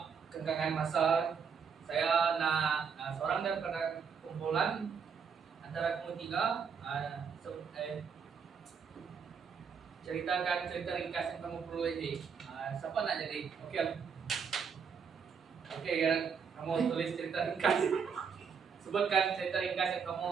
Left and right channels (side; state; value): left; quieter; 6.3 dB